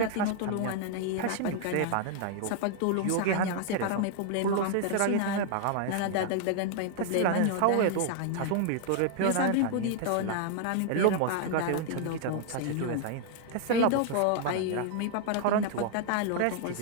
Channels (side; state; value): both; different; correlation 0.00